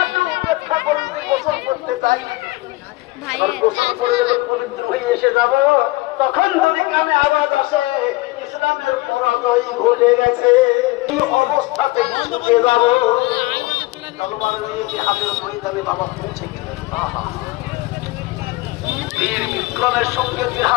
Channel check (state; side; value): quieter; right; 21.1 dB